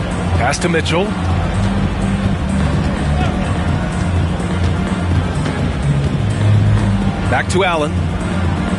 Pass to Mitchell. Back to Allen.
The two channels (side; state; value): both; identical; correlation 1.00